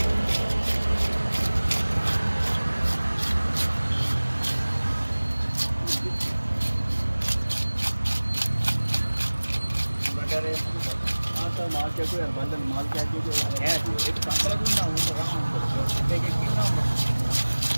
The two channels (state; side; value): inverted; both; correlation -1.00